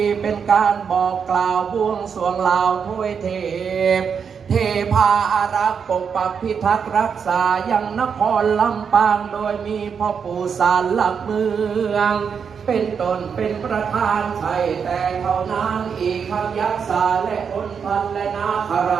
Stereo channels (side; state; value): left; quieter; 6.6 dB